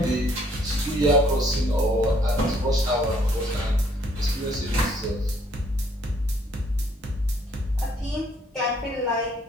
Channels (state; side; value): normal; both; correlation 0.65